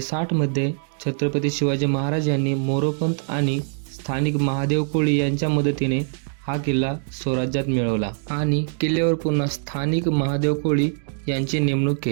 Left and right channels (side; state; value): left; silent; 63 dB below the other